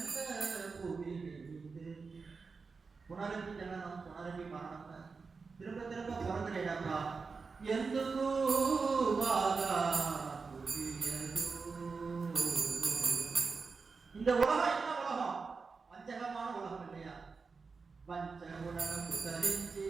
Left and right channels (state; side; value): quieter; left; 4.7 dB